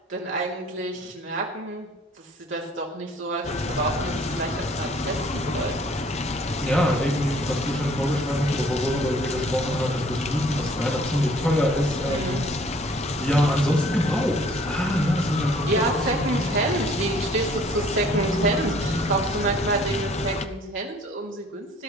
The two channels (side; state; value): both; normal; correlation 0.56